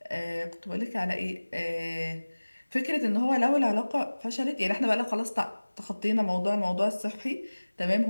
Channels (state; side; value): inverted; both; correlation -1.00